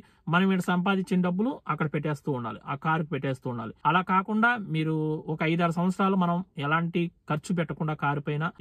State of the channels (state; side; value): identical; both; correlation 1.00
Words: మనం ఇక్కడ సంపాదించిన డబ్బులు అక్కడ పెట్టేస్తూ ఉండాలి, ఆ కారుకు పెట్టేస్తూ ఉండాలి. అలా కాకుండా మీరు ఒక 5-6 సంవత్సరాలు మనం ఎలాంటి ఖర్చు పెట్టకుండా కారు పైన